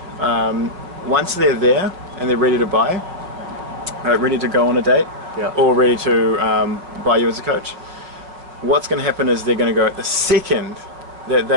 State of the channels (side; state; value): left; late; 5.6 ms